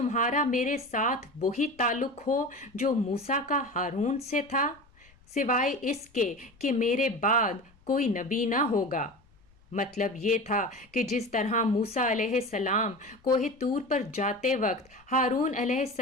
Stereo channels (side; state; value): left; noise; rumble, 30 dB below the sound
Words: میرے ساتھ وہی تعلق ہو جو موسیٰ کا ہارون سے تھا، سوائے اس کے کہ میرے بعد کوئی نبی نہ ہوگا؟ مطلب یہ تھا کہ جس طرح موسیٰ علیہ السلام کوہ طور پر جاتے وقت ہارون علیہ